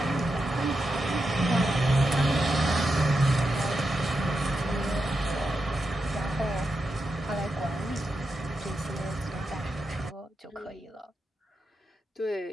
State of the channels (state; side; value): normal; both; correlation 0.87